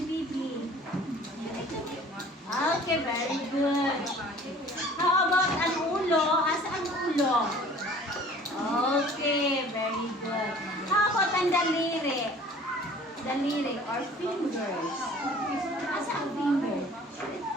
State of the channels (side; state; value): both; normal; correlation 0.49